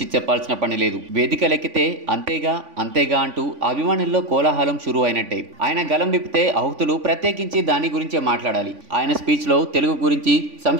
చెప్పాల్సిన పని లేదు. వేదికలెక్కితే అంతేగా అంటూ అభిమానుల్లో కోలాహలం షురూ అయినట్టే. ఆయన గలం విప్పితే ఆహుతులు ప్రత్యేకించి దాని గురించే మాట్లాడాలి. ఆయన స్పీచ్లో తెలుగు గురించి,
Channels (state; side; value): late; left; 3.5 ms